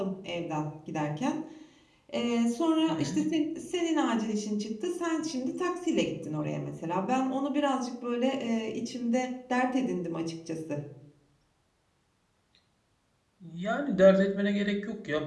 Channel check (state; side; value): identical; both; correlation 1.00